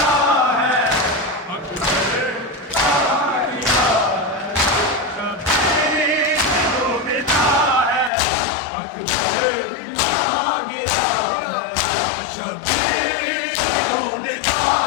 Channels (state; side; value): drops out; right; at 8.1 s